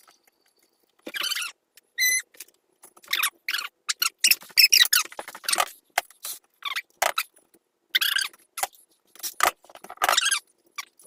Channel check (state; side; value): identical; both; correlation 1.00